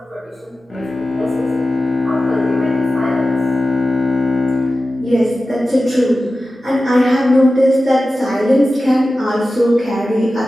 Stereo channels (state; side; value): normal; both; correlation 0.94